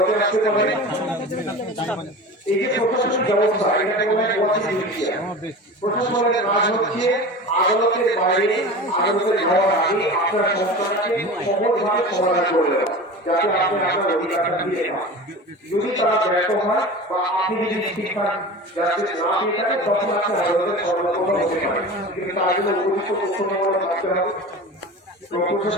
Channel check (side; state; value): both; normal; correlation 0.33